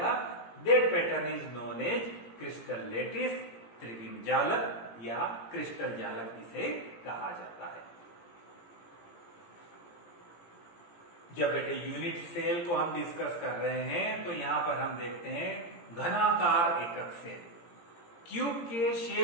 that pattern is known as crystal lattice, त्रिविम जालक या क्रिस्टल जालक इसे कहा जाता है। जब बेटे यूनिट सेल को हम डिस्कस कर रहे हैं तो यहां पर हम देखते हैं घनाकार एकक सेल, क्यूब के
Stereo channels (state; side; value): late; right; 17 ms